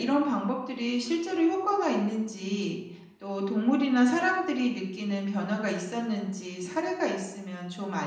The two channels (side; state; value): both; identical; correlation 1.00